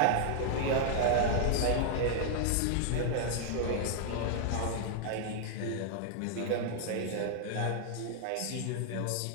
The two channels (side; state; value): both; different; correlation 0.00